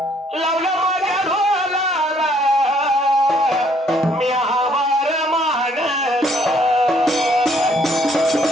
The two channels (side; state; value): both; normal; correlation 0.65